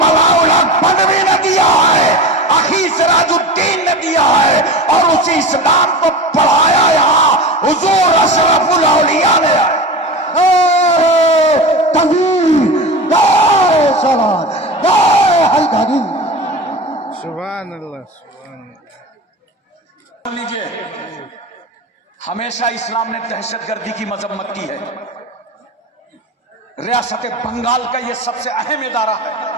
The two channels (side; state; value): both; normal; correlation 0.29